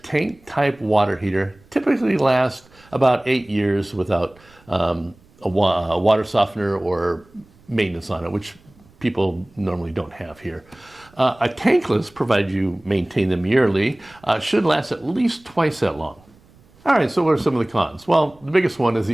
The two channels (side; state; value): right; noise; rumble, 29 dB below the sound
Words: tank-type water heater typically lasts about 8 years without a water softener or maintenance on it, which people normally don't have here. A tankless, provided you maintain them yearly, should last at least twice that long. All right, so what are some of the cons? Well, the biggest one is